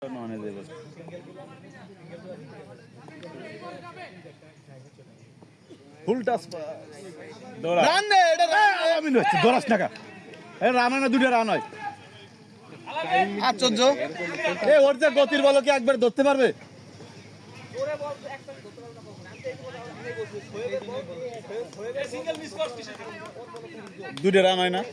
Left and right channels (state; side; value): identical; both; correlation 1.00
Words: ননে দেবে ফুল টাচ দৌড়া রান দে এটা আমি নষ্ট দৌড়াস টাকা এ রান না দুটো রান হয় আশ্চর্য এ ওর যে গতির বল কি একবার ধরতে পারবে ওরে বল একটা ধরতে পারবে না কখন আমি তো সিঙ্গেল মিস করছিস দুটো রান হয় না